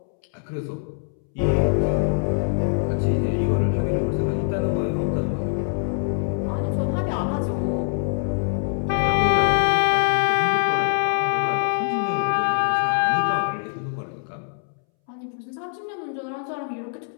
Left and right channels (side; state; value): right; silent; 63 dB below the other